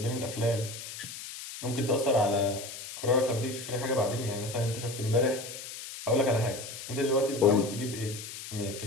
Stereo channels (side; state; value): left; noise; hiss, 10 dB below the sound